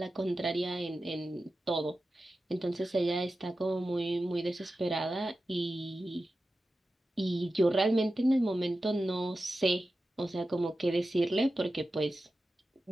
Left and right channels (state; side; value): normal; both; correlation 0.93